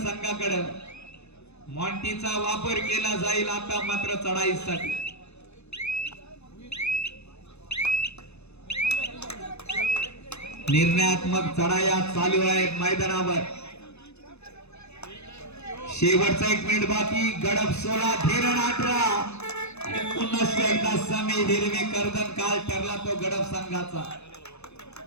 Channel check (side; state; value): right; late; 0.81 ms